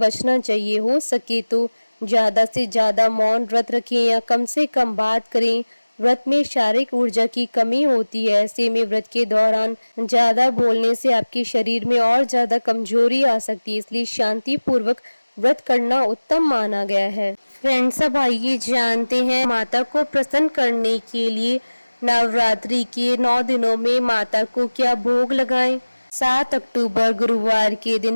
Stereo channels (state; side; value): inverted; both; correlation -1.00